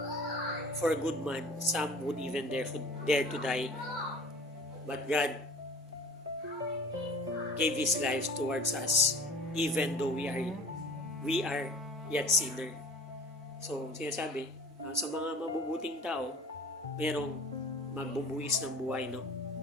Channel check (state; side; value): normal; both; correlation 0.43